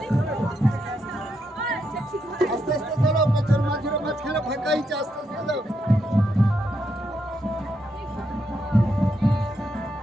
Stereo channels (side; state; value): both; normal; correlation 0.80